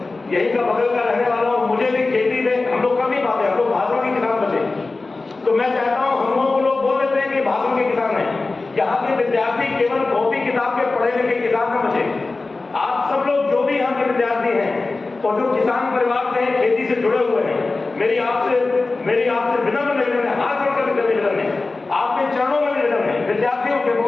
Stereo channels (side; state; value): right; quieter; 3.5 dB